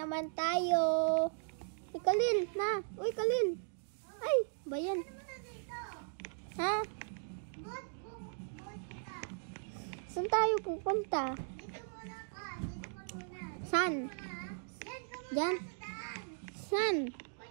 tayo. Uy, Kalil, na. Uy, Kalil. Ay, ba yan? Ha? Saan tayo pupunta? San? Diyan? San?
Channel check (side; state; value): left; silent; digital silence